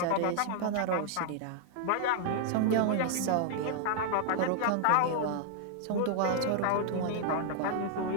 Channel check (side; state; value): both; different; correlation 0.00